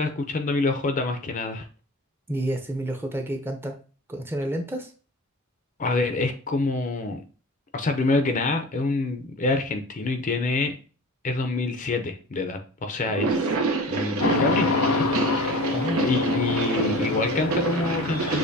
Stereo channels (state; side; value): normal; both; correlation 0.38